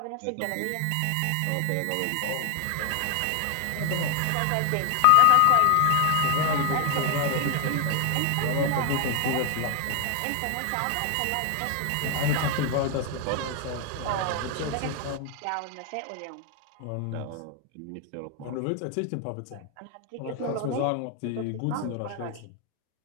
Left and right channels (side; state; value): both; different; correlation 0.00